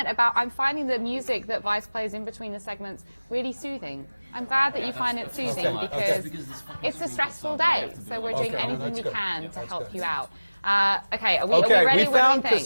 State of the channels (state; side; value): inverted; both; correlation -1.00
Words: about I'm finding the music that Vice plays in between the segments really soothing. I'm glad that you find it soothing because it's a stressful day, so we're doing anything we can to help you out. Okay, are we ready? We found